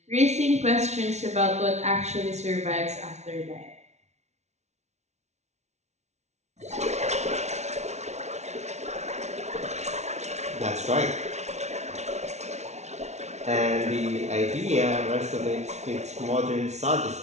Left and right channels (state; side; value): late; left; 0.32 ms